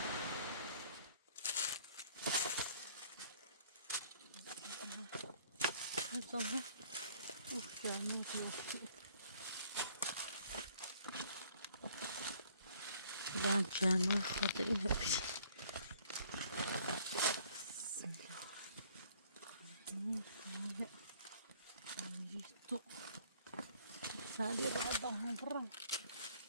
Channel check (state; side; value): inverted; both; correlation -0.58